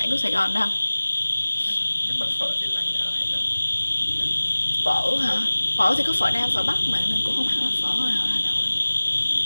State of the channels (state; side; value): inverted; both; correlation -1.00